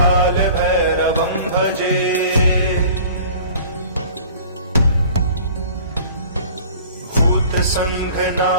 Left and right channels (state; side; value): inverted; both; correlation -0.47